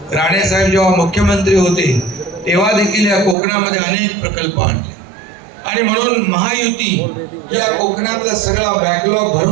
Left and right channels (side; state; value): left; drops out; at 3.4 s